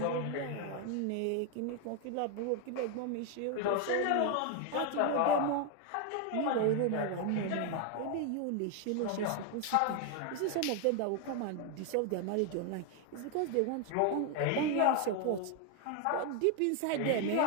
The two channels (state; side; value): different; both; correlation 0.01